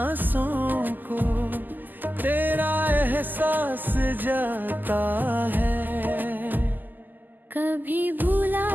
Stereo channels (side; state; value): left; late; 0.087 ms